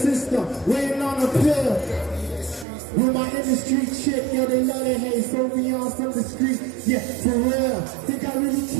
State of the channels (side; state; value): left; drops out; at 2.7 s